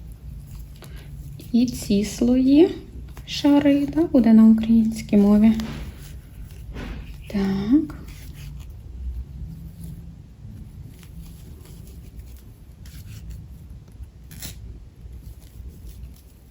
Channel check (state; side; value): identical; both; correlation 1.00